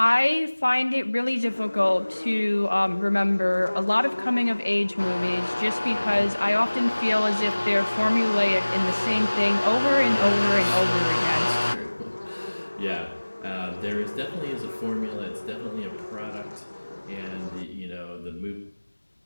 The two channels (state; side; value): inverted; both; correlation -1.00